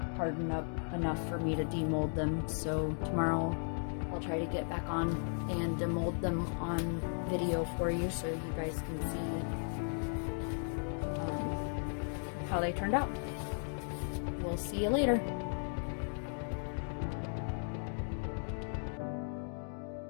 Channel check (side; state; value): right; silent; 54 dB below the other